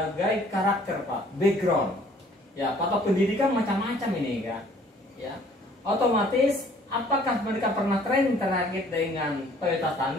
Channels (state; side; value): normal; both; correlation 0.57